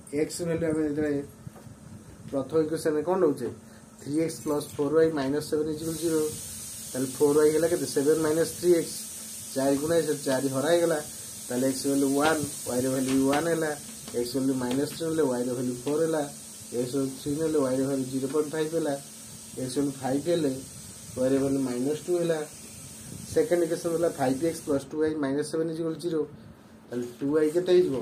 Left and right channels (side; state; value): both; identical; correlation 1.00